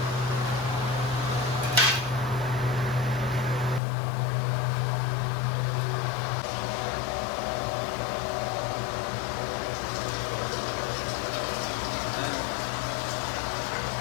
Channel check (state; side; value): drops out; right; at 3.8 s